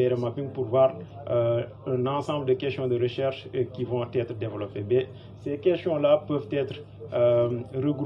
mapping pour voir un ensemble de questions de recherche qui vont être développées. Mais ces questions-là peuvent être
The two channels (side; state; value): both; identical; correlation 1.00